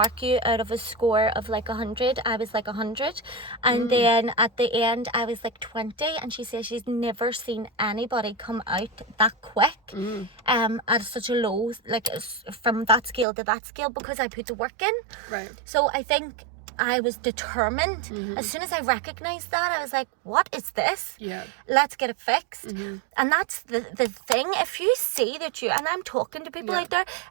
you out of a score of like 100. I was like 100. And then at the end, I was like 20. And she says she's never seen anybody come out that quick at such a low, like from that scale to that scale, because I put the work in. So I think I was determined. As soon as I recognized that, I was like, what is this? Let's get it fixed. And that's the thing. If you see that you, and I'm talking to people out there,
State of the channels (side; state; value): left; drops out; at 13.2 s